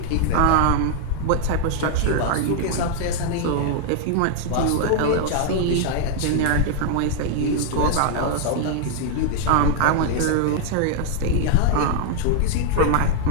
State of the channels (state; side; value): different; both; correlation 0.00